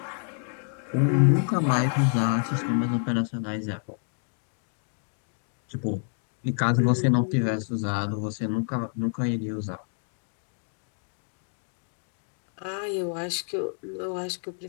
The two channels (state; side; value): silent; right; 59 dB below the other